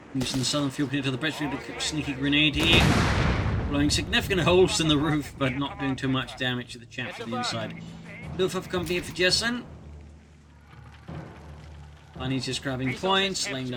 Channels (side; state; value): both; identical; correlation 1.00